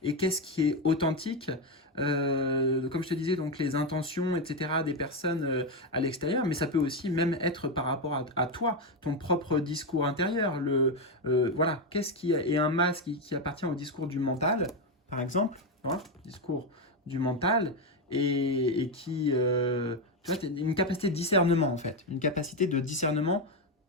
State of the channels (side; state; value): both; normal; correlation 0.09